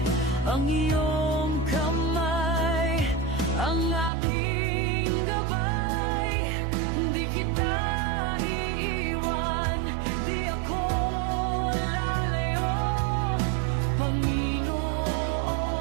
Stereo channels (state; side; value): drops out; left; at 4.1 s